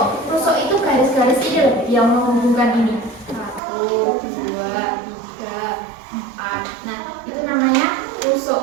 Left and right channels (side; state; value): left; drops out; at 3.6 s